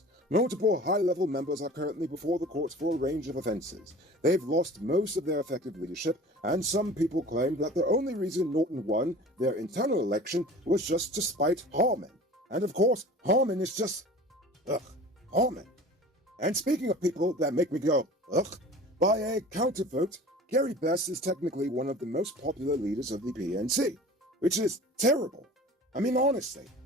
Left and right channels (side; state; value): both; normal; correlation 0.41